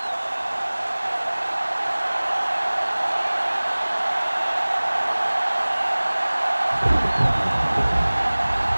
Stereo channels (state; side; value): inverted; both; correlation -1.00